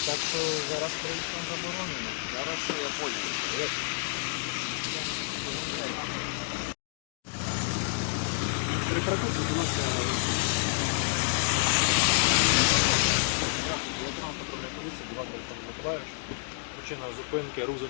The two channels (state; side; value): silent; right; digital silence